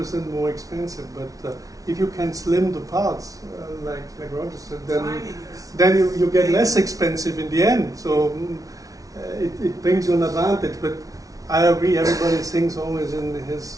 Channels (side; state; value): left; late; 0.17 ms